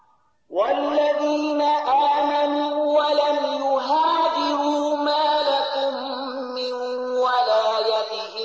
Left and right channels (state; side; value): identical; both; correlation 1.00